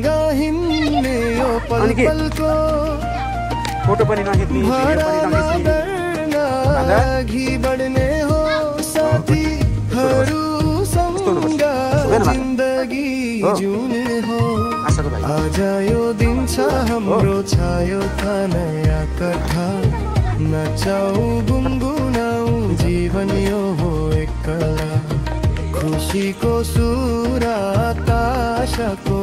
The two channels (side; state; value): both; identical; correlation 1.00